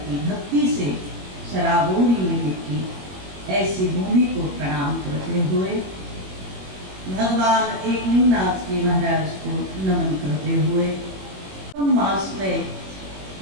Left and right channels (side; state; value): left; late; 21 ms